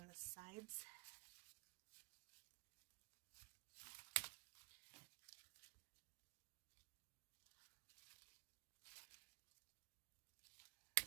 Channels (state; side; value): quieter; left; 32.4 dB